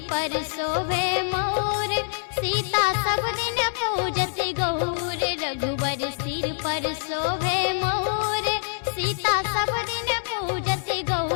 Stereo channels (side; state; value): right; silent; digital silence